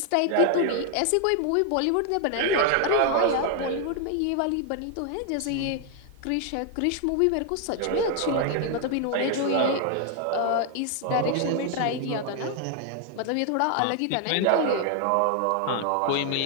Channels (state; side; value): different; both; correlation 0.00